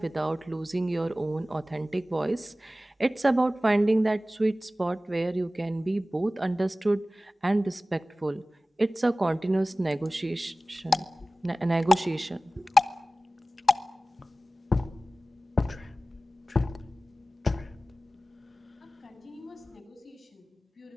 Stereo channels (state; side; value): normal; both; correlation 0.97